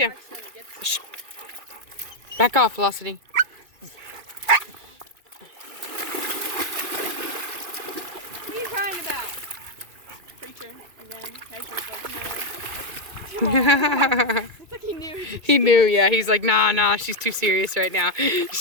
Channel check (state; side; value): late; left; 2.3 ms